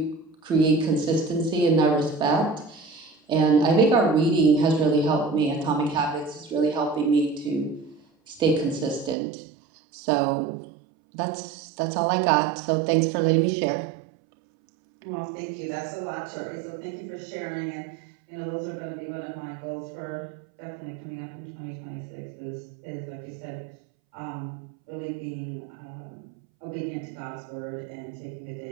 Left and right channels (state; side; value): drops out; left; at 9.2 s